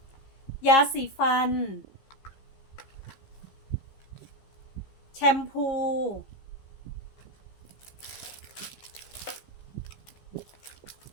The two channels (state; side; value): late; right; 15 ms